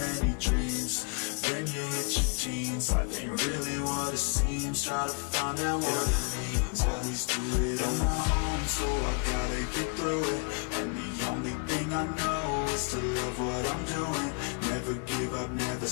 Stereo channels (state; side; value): quieter; right; 35.7 dB